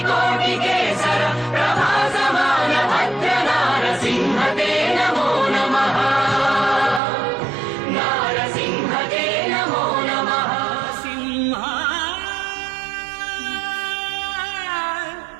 प्रभासमान भद्र नारसिंहते नमो नमः। नारसिंहते नमो नमः। सिंह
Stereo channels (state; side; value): drops out; left; at 7.0 s